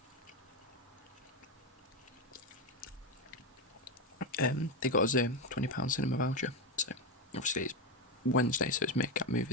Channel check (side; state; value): both; normal; correlation 0.10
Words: They got us a £20 cinema voucher, so obviously it's Wednesday, so it's Make Up